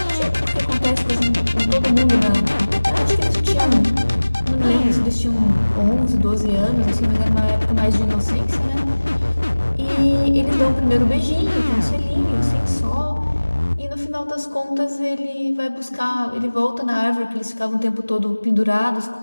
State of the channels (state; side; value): inverted; both; correlation -1.00